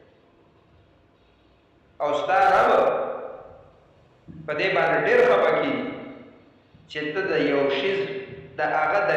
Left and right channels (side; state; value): both; identical; correlation 1.00